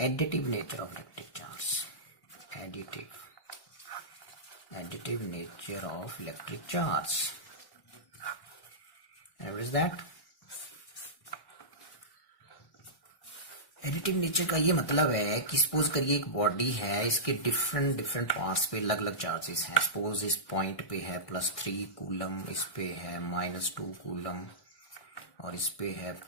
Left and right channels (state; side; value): late; right; 1.1 ms